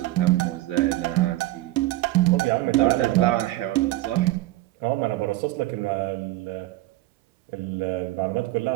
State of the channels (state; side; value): quieter; left; 17.1 dB